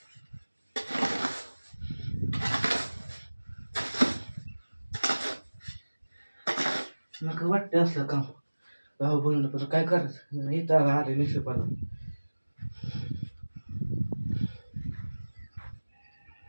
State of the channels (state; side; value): inverted; both; correlation -1.00